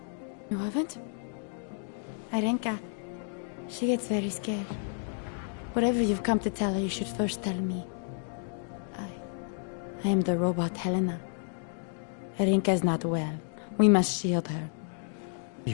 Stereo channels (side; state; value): right; silent; digital silence